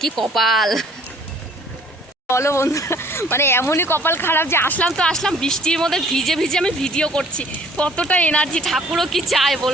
কি কপাল বলো বন্ধু। মানে এমনই কপাল খারাপ যে আসলাম তো আসলাম, বৃষ্টির মধ্যে ভিজে ভিজে আমি ভিডিও করছি। কতটা এনার্জি, ঠাকুরও কি চায়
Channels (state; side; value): normal; both; correlation 0.56